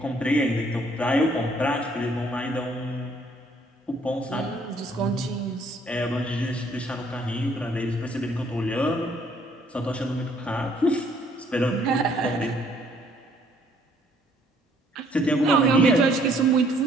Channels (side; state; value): both; normal; correlation 0.63